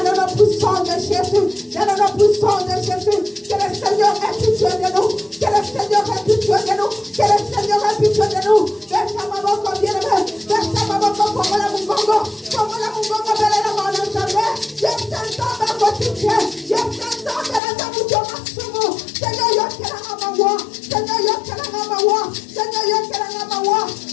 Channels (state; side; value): drops out; right; at 17.6 s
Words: le nom puissant de Jésus. Dans le nom puissant de Jésus. Que le Seigneur ait pitié de nous. Que le Seigneur ait pitié de nous. Que le Seigneur ait pitié de nous. Verse ma main comme bien-aimé. Verse ma main comme la Mungongo. Comme la Mungongo, belle la main dans sa main. Je t'entends dans votre pitié. Je t'entends dans la Zamudio Masumu. Seigneur, yo te la mamawa. Seigneur, yo te la mamawa. Seigneur, yo te la mamawa.